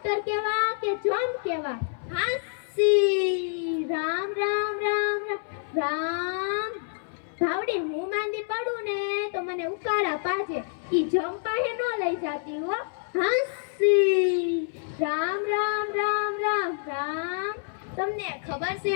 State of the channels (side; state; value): right; silent; 60 dB below the other